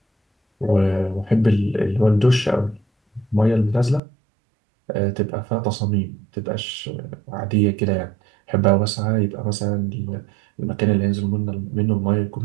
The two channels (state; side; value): drops out; left; at 4.0 s